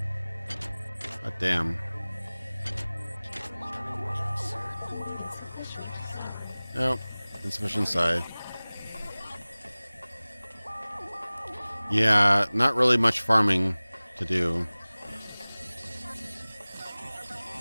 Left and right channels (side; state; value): both; inverted; correlation -0.99